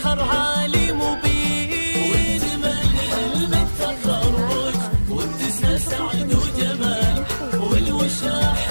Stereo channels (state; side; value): inverted; both; correlation -1.00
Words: عالي مبين. واكتمال حلم التخرج واتساع سعد وجمال، والوشاح